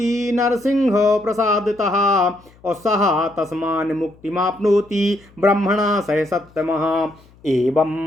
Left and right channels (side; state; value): left; noise; hum, 28 dB below the sound